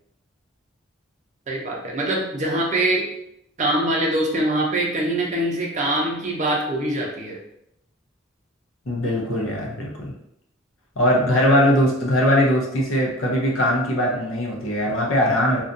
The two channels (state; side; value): normal; both; correlation 0.35